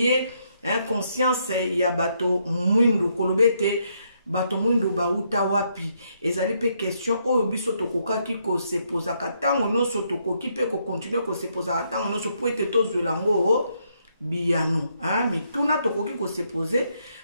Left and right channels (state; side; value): inverted; both; correlation -0.75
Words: conscience ya bato mwindu kolobete bato mwindu ba uta wapi ezali pe question oyo biso tokokaki ko se posa katango noso tokoki pe ko continuer ko se posa katango noso poete tozwela ngo biyano mituna tokoki ko se poser